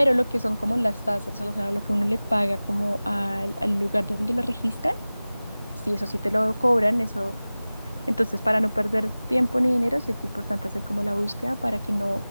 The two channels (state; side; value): inverted; both; correlation -0.98